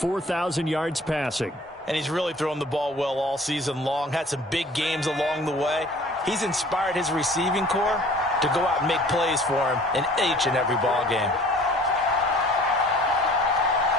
yards passing. And he's really thrown the ball well all season long, had some big games along the way. He's inspired his receiving corps to go out and make plays for him in each and every ball game.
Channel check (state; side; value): normal; both; correlation 0.50